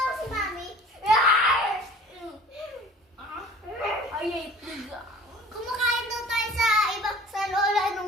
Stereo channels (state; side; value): normal; both; correlation 0.46